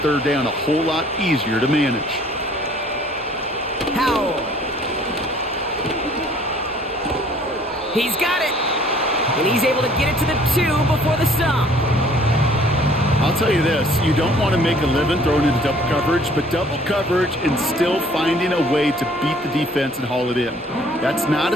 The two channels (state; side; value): normal; both; correlation 0.56